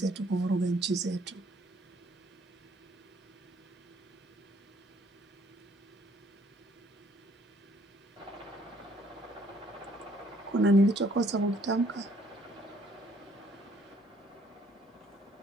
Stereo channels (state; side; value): normal; both; correlation 0.63